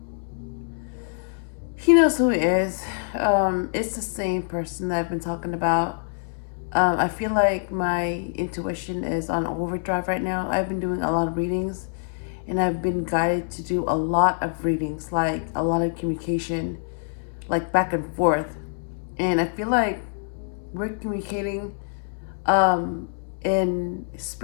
He knows who he is. It's the same person that I've been talking about. I feel like my intuition is on overdrive right now. I've been doing a lot of readings, and I've been guided to do a lot of readings, like a lot of communication, like back and forth. And I feel like we're communicating in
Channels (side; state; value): right; silent; 62 dB below the other